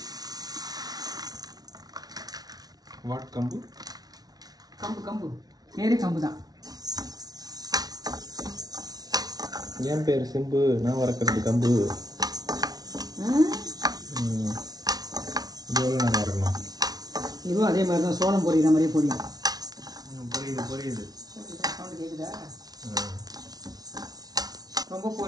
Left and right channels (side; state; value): left; late; 0.19 ms